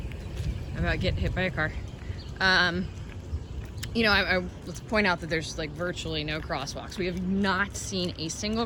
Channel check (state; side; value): identical; both; correlation 1.00